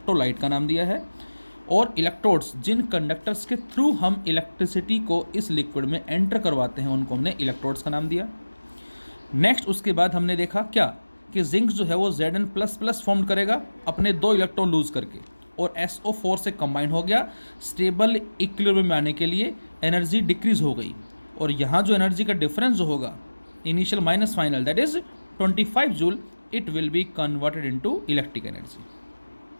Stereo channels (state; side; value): inverted; both; correlation -1.00